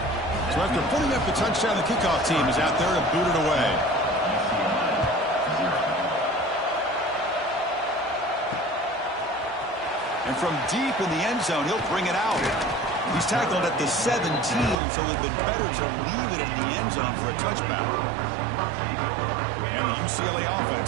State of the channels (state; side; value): drops out; left; at 14.8 s